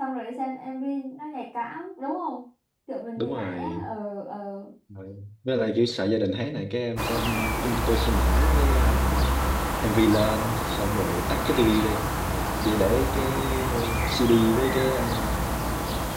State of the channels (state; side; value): identical; both; correlation 1.00